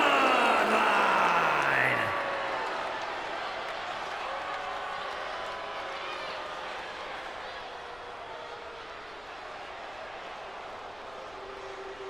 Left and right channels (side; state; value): left; noise; rumble, 24 dB below the sound